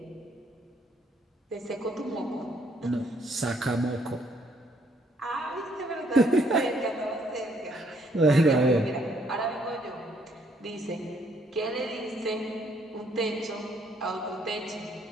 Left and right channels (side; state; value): both; normal; correlation 0.68